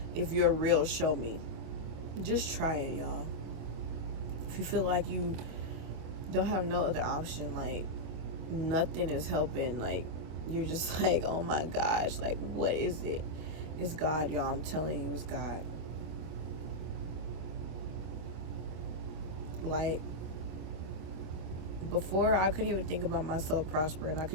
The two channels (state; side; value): late; left; 25 ms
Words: if you're real, show me. Just try it, y'all. If you feel like you don't have no other option, like, nothing is helping, like, you're just like, oh my gosh, like, what is it? It's God, y'all. I'm telling you, it's God. Like, before, I couldn't even think about myself prospering. I